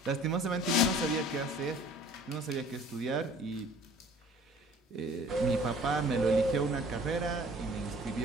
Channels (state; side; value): normal; both; correlation 0.51